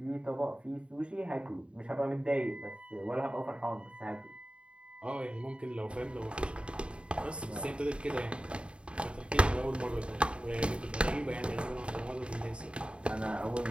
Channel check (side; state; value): left; late; 0.056 ms